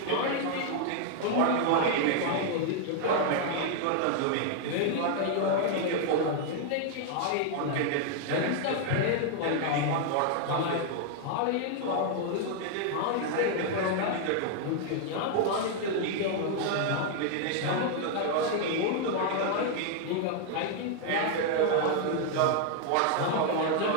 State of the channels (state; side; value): different; both; correlation 0.00